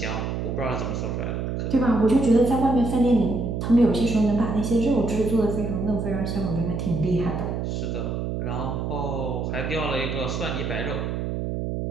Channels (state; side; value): noise; right; hum, 2 dB below the sound